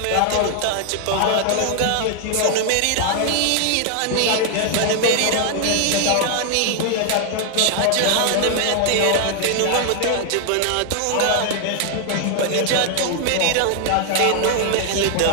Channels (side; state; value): both; different; correlation 0.00